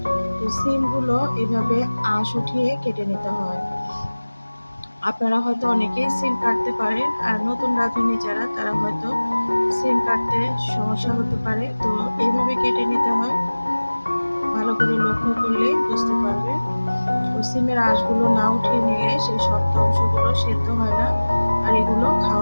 তো সিমগুলো এভাবে আঁশ উঠিয়ে কেটে নিতে হয়। আপনারা হয়তো অনেকেই সিম কাটতে পারেন, আর নতুন রাঁধুনি যারা তারা হয়তো সিম কাটতে সমস্যা হতে পারে। তো এইভাবে কেটে নিতে হয়, ভালো করে লক্ষ্য করলেই বুঝতে পারবে। তো সিমের আঁশগুলো না উঠিয়ে নিলে সেই শক্ত অংশগুলো সেদ্ধ হয় না, আর এগুলো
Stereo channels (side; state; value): both; inverted; correlation -1.00